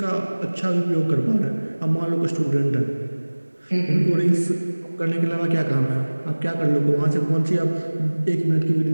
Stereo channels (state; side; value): inverted; both; correlation -1.00